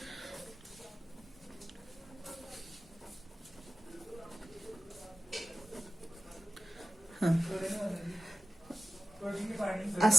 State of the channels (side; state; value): both; normal; correlation 0.92